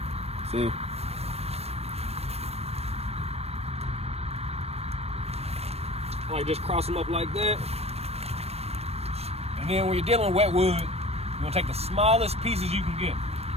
See? Like just cross them up like that. And then when you're dealing with wet wood, you're gonna take the smallest pieces you can get.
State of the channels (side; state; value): left; late; 0.30 ms